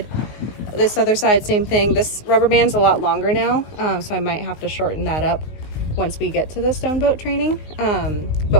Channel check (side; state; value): right; late; 19 ms